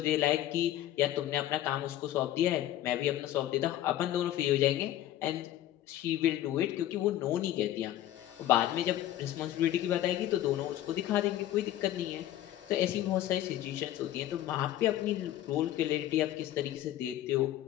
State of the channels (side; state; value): right; quieter; 13.1 dB